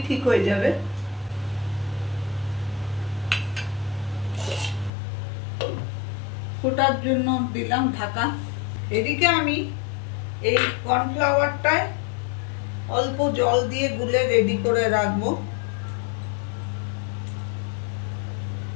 ঠিক হয়ে যাবে। ফোটার জন্য দিলাম ঢাকা। এদিকে আমি এই কর্নফ্লাওয়ারটায় অল্প জল দিয়ে গুলে রেডি করে রাখবো।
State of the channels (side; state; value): right; drops out; at 4.9 s